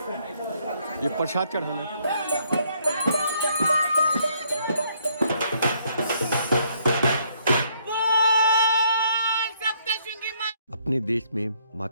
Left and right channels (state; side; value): inverted; both; correlation -0.69